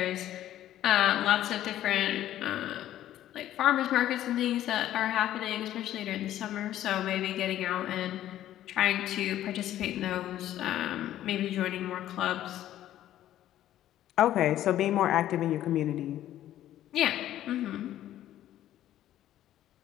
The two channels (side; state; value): right; quieter; 12.7 dB